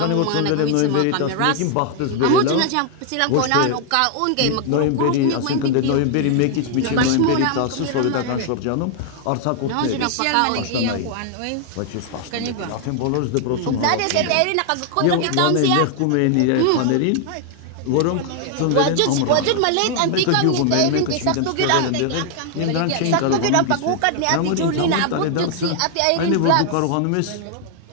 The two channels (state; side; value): different; both; correlation 0.00